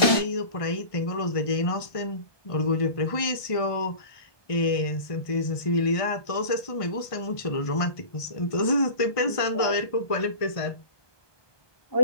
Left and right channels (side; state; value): right; late; 1.5 ms